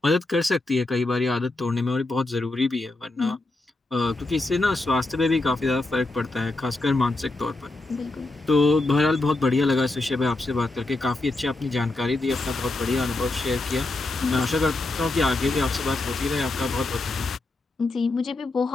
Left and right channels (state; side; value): quieter; right; 3.0 dB